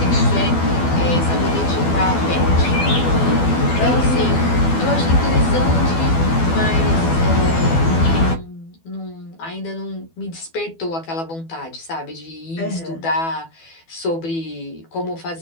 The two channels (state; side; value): late; right; 12 ms